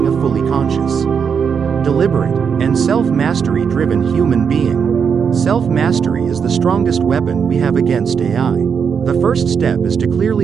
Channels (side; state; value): left; quieter; 6.7 dB